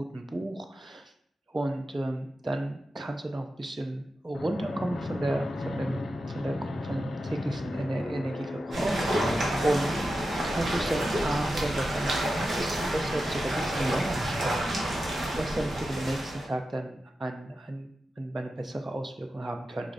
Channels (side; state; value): both; normal; correlation 0.91